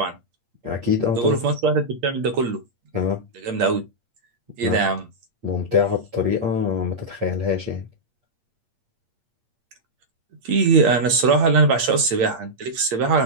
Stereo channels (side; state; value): left; late; 8.6 ms